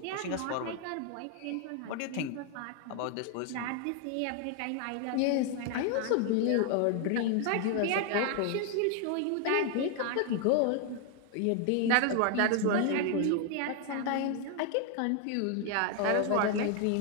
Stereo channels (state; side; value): different; both; correlation 0.01